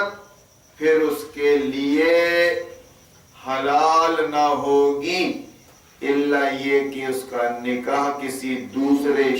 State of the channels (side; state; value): both; identical; correlation 1.00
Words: پھر اس کے لیے حلال نہ ہوگی الا یہ کہ اس کا نکاح کسی دوسرے